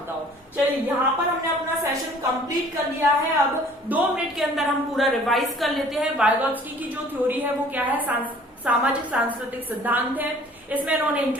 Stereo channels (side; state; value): both; normal; correlation 0.52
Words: हो। चलिए, यहाँ पर हमने अपना सेशन कंप्लीट कर लिया है। अब 2 मिनट के अंदर हम पूरा रिवाइज कर लेते हैं। वाइगोत्स्की की जो थ्योरी है वो क्या है, सामाजिक सांस्कृतिक सिद्धांत है। इसमें इन्होंने